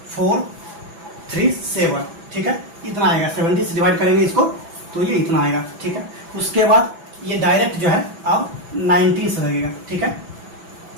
4 3 7। ठीक है, इतना आएगा, 17 से डिवाइड करेंगे इसको तो ये इतना आएगा। ठीक है, उसके बाद ये डायरेक्ट जो है अब 19 से लगेगा। ठीक है,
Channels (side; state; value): left; late; 6.0 ms